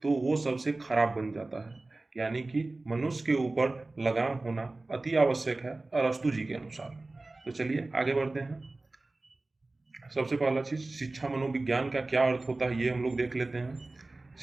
तो वो सबसे खराब बन जाता है। यानी कि मनुष्य के ऊपर लगाम होना अति आवश्यक है अरस्तु जी के अनुसार। तो चलिए आगे बढ़ते हैं। सबसे पहला चीज, शिक्षा मनोविज्ञान का क्या अर्थ होता है ये हम लोग देख लेते हैं।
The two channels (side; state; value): left; quieter; 3.1 dB